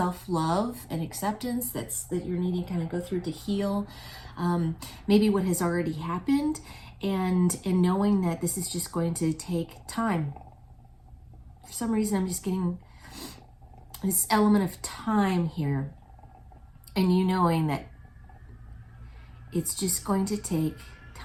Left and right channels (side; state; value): both; identical; correlation 1.00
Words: and acceptance that you're needing to kind of go through to heal maybe what has already happened, and knowing that this is just going to take time. For some reason, I'm just getting this element of time here, and you knowing that it's just going to take